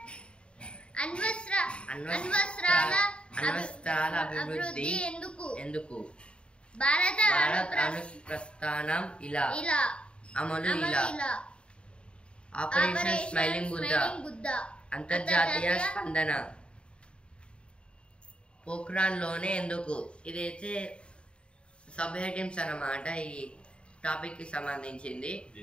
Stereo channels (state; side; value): late; right; 0.055 ms